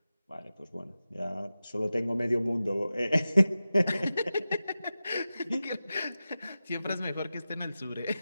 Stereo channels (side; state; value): both; inverted; correlation -0.94